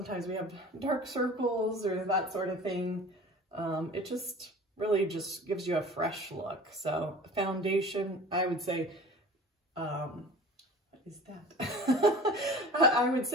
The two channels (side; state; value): both; normal; correlation 0.40